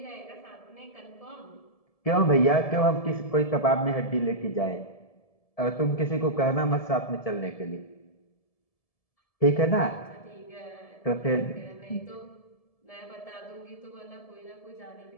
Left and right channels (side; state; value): right; late; 1.7 ms